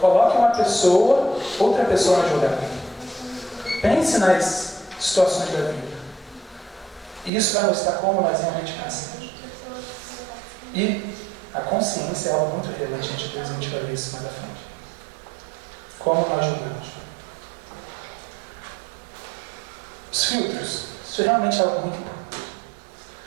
uma pessoa, outra pessoa na jogada. Pense nas situações da vida. E isso vai mostrar como nós realmente pensamos. E a consciência é algo muito relevante diante de Deus, a gente vai ver isso mais à frente. Como nós julgamos. Os filtros. Isso realmente é algo muito importante.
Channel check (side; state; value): left; drops out; at 7.3 s